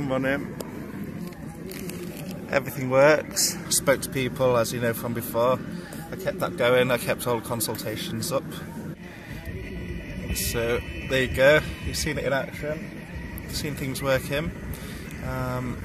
running. Everything works. Spoke to people, as you know from before. I kept that going. I kept all the consultations up. So there you go. You've seen it in action. You've seen things working.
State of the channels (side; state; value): both; identical; correlation 1.00